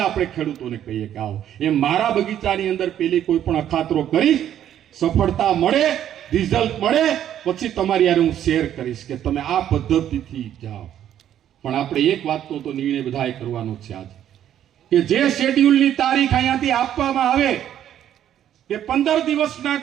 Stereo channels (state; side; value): quieter; left; 10.7 dB